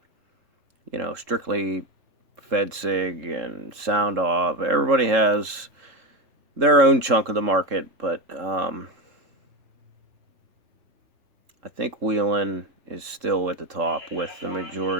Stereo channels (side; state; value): left; late; 3.7 ms